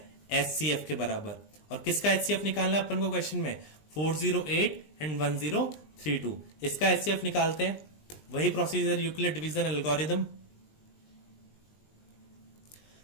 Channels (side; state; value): right; late; 20 ms